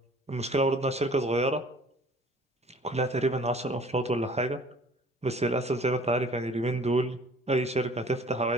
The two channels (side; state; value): both; normal; correlation 0.51